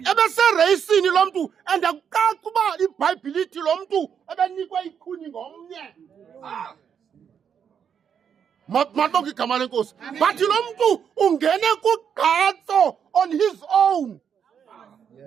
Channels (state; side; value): quieter; left; 7.7 dB